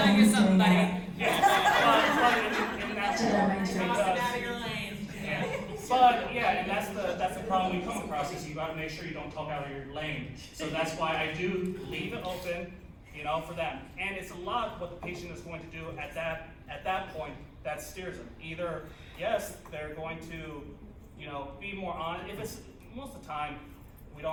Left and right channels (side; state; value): both; identical; correlation 1.00